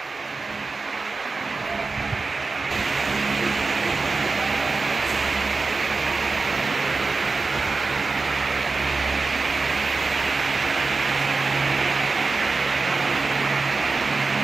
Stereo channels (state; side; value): quieter; left; 4.0 dB